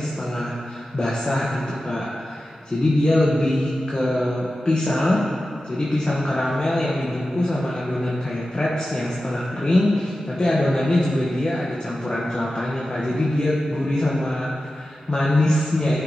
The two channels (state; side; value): normal; both; correlation 0.93